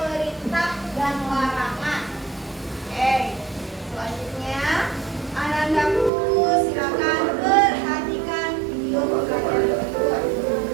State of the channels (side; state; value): left; drops out; at 6.1 s